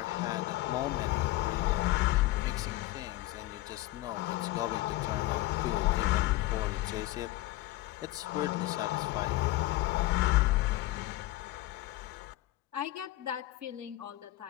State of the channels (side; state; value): right; quieter; 17.4 dB